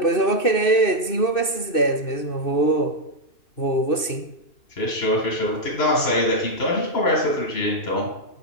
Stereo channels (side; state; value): right; late; 2.6 ms